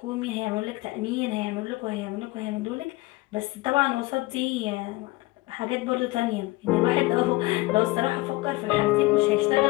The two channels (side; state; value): right; quieter; 20.9 dB